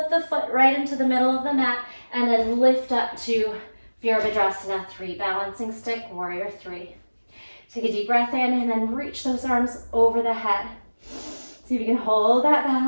the foot right into the middle of the mat, and then lift up to Virabhadrasana 3. Balancing stick, warrior 3. Take a deep breath in, and then reach those arms over the head. See if you can hold that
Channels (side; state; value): both; inverted; correlation -1.00